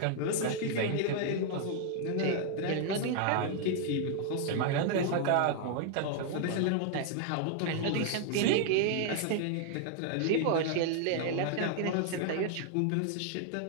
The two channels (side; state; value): both; different; correlation 0.00